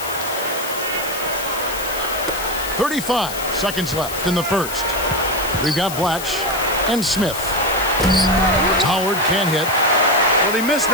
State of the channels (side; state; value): left; noise; hiss, 9 dB below the sound